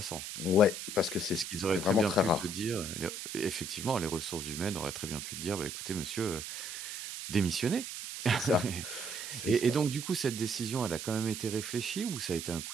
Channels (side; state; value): right; noise; hiss, 7 dB below the sound